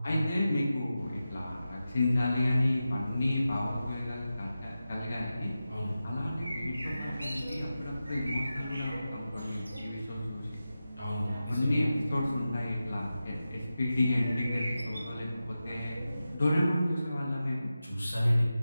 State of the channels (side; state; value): both; inverted; correlation -0.93